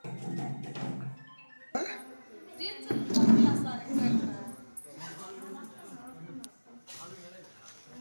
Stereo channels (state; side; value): inverted; both; correlation -1.00